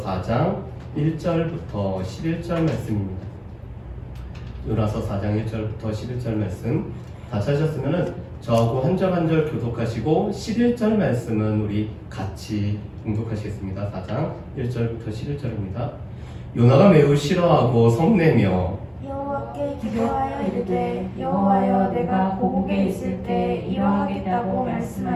4장 1절부터 11절 말씀입니다. 요나서 4장 1절부터 11절 말씀 다 찾으셨으면 저하고 한 절 한 절 교독하시고 11절 말씀은 우리 같이 공독하시겠습니다. 4장 1절부터 11절입니다. 요나가 매우 싫어하고 성내며 여호와께 기도하여 이르되 여호와여 내가 고국에 있을 때 이러하겠다고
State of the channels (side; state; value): both; identical; correlation 1.00